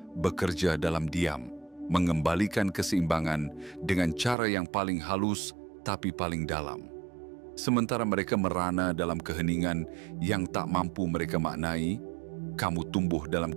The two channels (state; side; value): drops out; left; at 4.4 s